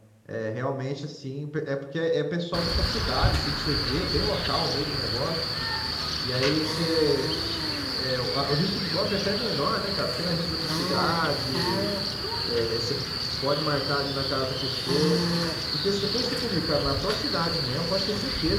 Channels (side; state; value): both; identical; correlation 1.00